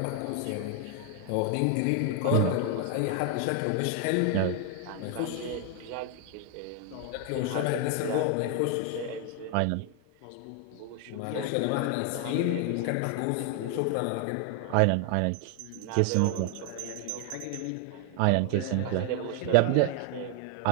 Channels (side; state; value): both; different; correlation 0.00